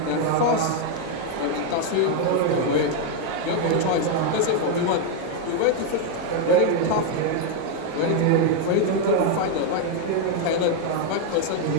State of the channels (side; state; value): both; different; correlation 0.00